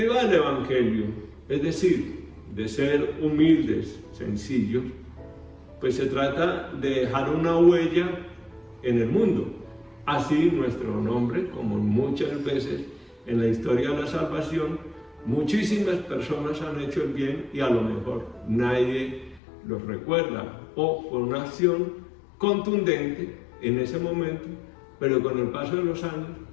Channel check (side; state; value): right; drops out; at 19.4 s